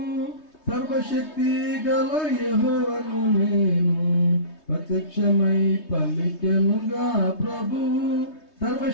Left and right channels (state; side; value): late; right; 3.2 ms